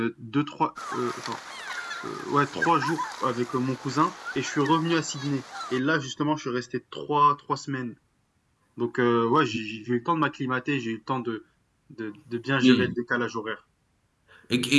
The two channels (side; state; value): both; identical; correlation 1.00